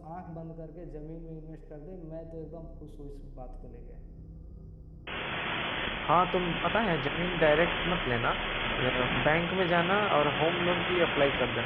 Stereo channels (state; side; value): identical; both; correlation 1.00